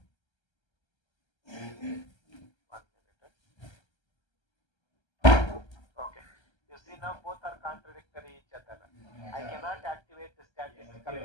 1 minute. Okay. You see now both are contradictory each other. I cannot activate the statistical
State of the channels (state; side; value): late; right; 1.3 ms